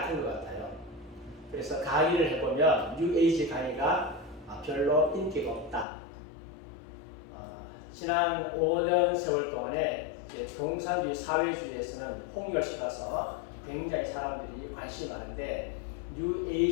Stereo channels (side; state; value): right; drops out; at 5.9 s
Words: 것 같아요. 그래서 강의를 해보면 뉴에이지 강의가 별로 인기가 없다. 지난 5년 세월 동안에 공산주의 사회주의에서는 폭렬시가서 굉장히 사람들이 관심이 많은데